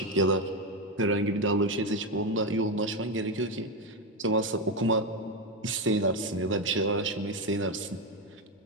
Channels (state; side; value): normal; both; correlation 0.10